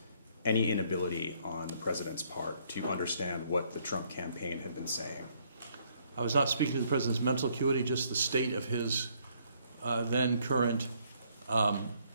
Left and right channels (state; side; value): inverted; both; correlation -0.67